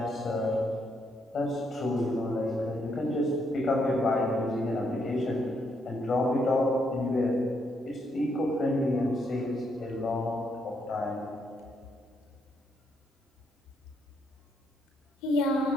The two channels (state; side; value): normal; both; correlation 0.76